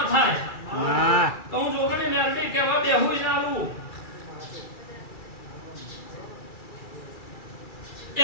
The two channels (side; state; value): right; late; 2.3 ms